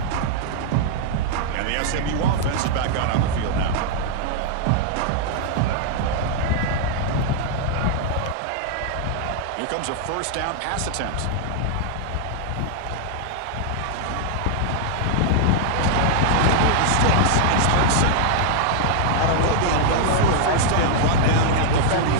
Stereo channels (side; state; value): both; different; correlation -0.01